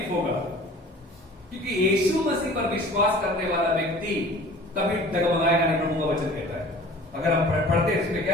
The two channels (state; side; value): normal; both; correlation 0.45